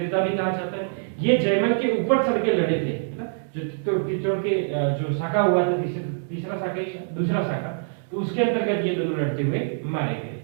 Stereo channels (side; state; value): left; silent; digital silence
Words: भी कहा जाता है। ये जयमल के ऊपर चढ़ के लड़े थे, जो चित्तौड़ के जो शाखा हुआ था, तीसरा शाखा, दूसरा शाखा, तो उसके अंतर्गत ये दोनों लड़ते हुए मारे गए